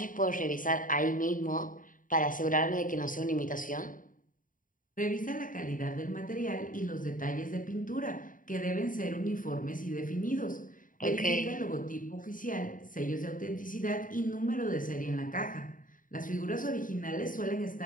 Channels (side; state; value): right; late; 0.39 ms